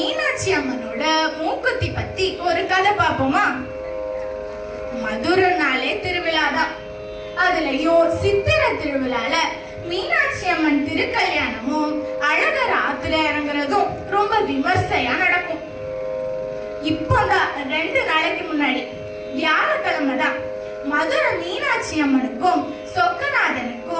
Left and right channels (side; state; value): both; identical; correlation 1.00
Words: அம்மனோட மூக்குத்தி பத்தி ஒரு கதை பார்ப்போமா? மதுரைனாலே திருவிழாதான். அதுலயும் சித்திர திருவிழால மீனாட்சி அம்மன் திருக்கல்யாணமும் அழகர் ஆத்துல இறங்குறதும் ரொம்ப விமர்சையா நடக்கும். இப்போதான் 2 நாளைக்கு முன்னாடி வியாழக்கிழமை தான் மதுரை மீனாட்சி அம்மனுக்கும்